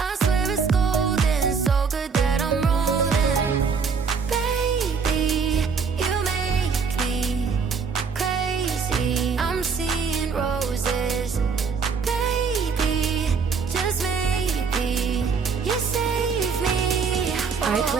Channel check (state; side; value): quieter; left; 5.5 dB